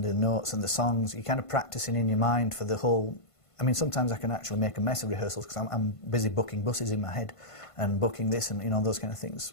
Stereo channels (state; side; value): late; right; 1.5 ms